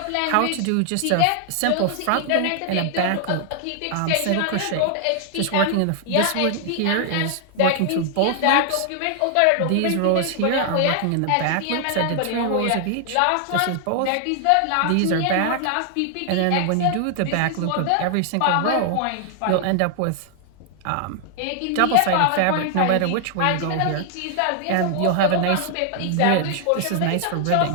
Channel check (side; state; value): both; different; correlation 0.00